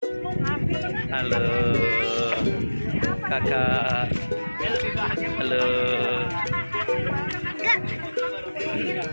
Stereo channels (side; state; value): both; inverted; correlation -1.00